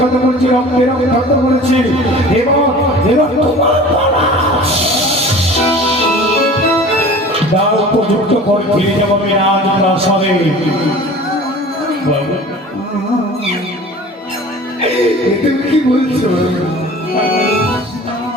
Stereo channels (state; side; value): normal; both; correlation 0.42